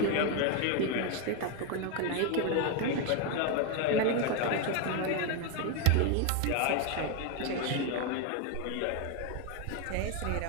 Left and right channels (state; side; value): different; both; correlation 0.01